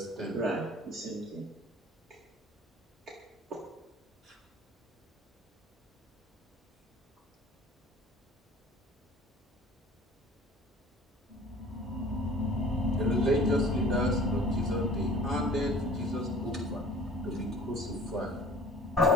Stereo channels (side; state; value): both; normal; correlation 0.47